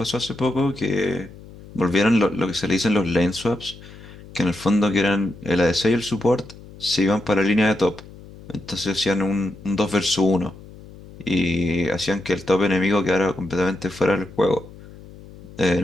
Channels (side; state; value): left; noise; hum, 19 dB below the sound